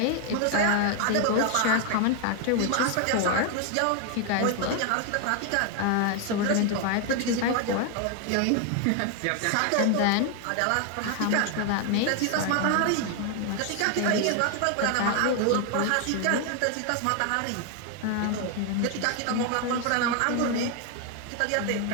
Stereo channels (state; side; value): different; both; correlation 0.01